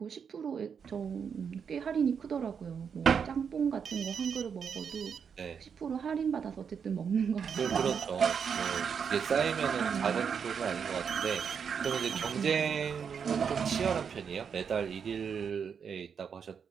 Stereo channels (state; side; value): quieter; left; 6.8 dB